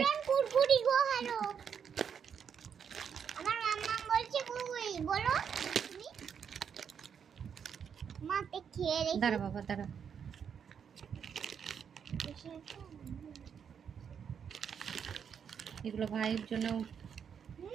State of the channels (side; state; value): left; quieter; 7.4 dB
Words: কুরকুরি গো হ্যালো আমার মাম্মা বলছে কুরকুরি বলো তুমি মাতে খেয়ে রেখে দাঁড়া বাবা দাঁড়া, এগুলো ভাইয়ের জন্য